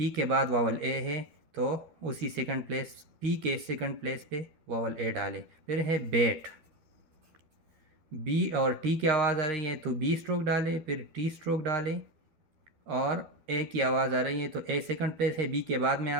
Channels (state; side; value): late; left; 12 ms